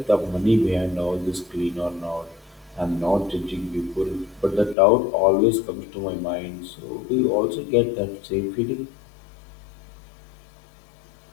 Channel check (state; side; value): drops out; right; at 4.8 s